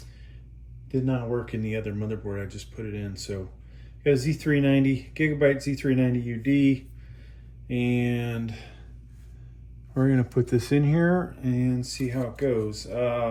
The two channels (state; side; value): identical; both; correlation 1.00